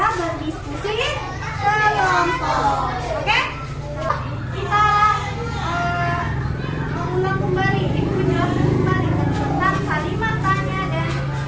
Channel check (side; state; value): both; identical; correlation 1.00